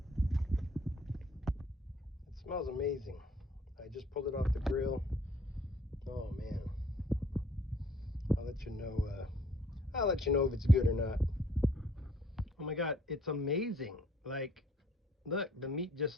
It smells amazing. I just pulled it off the grill. Oh man, I'll let you know if it's good or not. Oh my god, it's amazing. Like, look, the meat just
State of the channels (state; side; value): normal; both; correlation 0.60